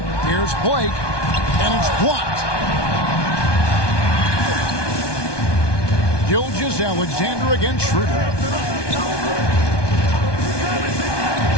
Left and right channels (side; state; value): right; late; 1.2 ms